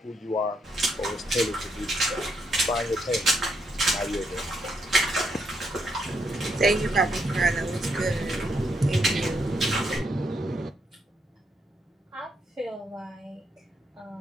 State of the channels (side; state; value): both; normal; correlation 0.77